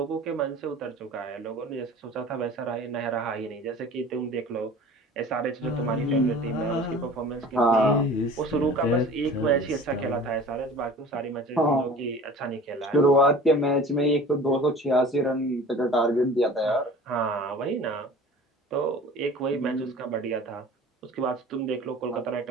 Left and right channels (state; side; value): normal; both; correlation 0.43